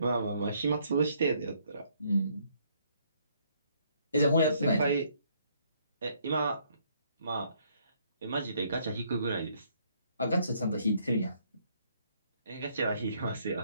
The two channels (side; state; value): both; inverted; correlation -0.68